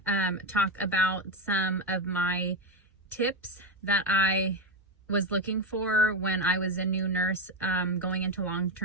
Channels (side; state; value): both; normal; correlation 0.11